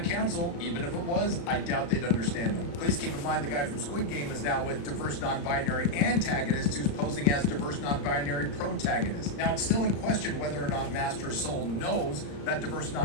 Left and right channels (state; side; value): late; right; 35 ms